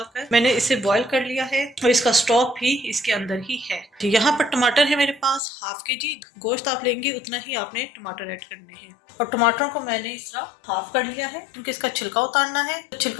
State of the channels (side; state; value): right; drops out; at 5.4 s